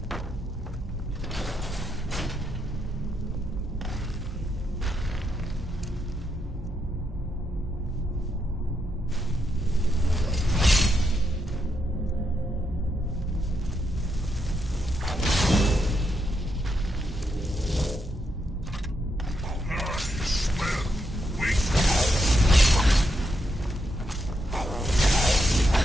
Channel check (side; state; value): both; normal; correlation 0.81